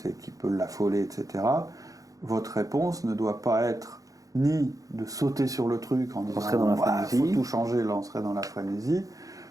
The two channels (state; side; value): late; left; 0.17 ms